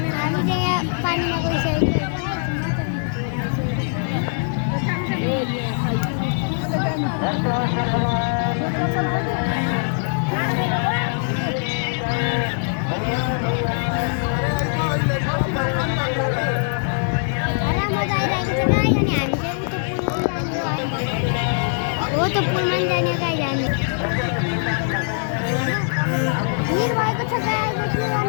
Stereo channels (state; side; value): silent; right; 61 dB below the other